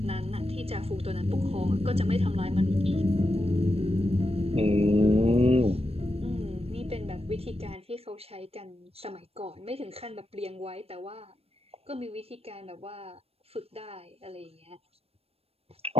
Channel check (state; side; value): late; left; 0.29 ms